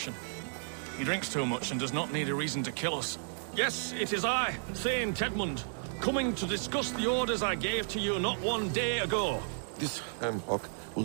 He drinks too much and does not need a reason to kill us. Yes, it is I, Thane Tedmund, coming to discuss the orders I gave to you not one day ago. This hamhock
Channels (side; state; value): left; silent; digital silence